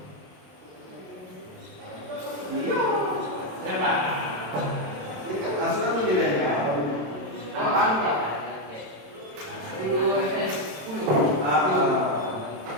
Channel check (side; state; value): left; late; 27 ms